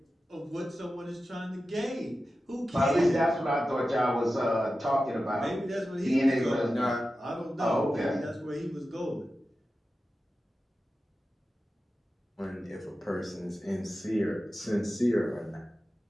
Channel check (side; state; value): both; normal; correlation 0.93